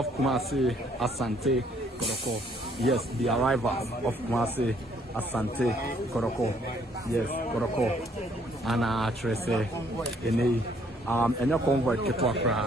Kumasi Asante Kotoko. Yes, the arrival of Kumasi Asante Kotoko. Yes, Kotoko ana Trese enei enye convoy ketwa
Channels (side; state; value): both; normal; correlation 0.65